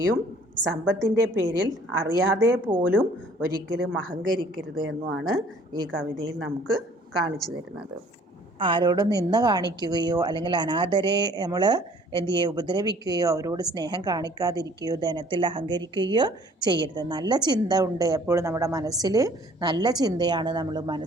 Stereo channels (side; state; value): both; normal; correlation 0.55